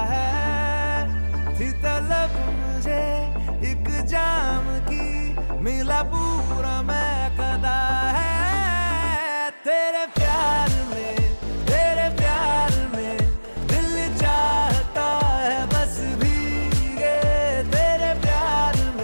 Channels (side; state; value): both; inverted; correlation -1.00